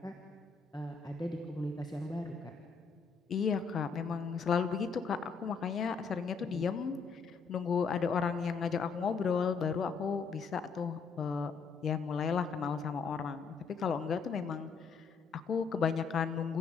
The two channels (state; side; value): quieter; right; 5.4 dB